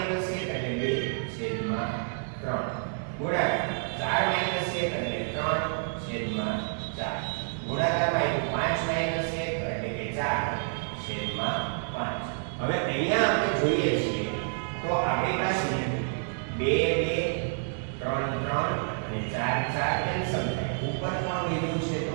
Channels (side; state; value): left; silent; 59 dB below the other